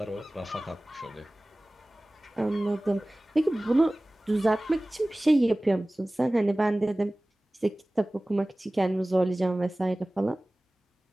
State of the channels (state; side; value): normal; both; correlation 0.98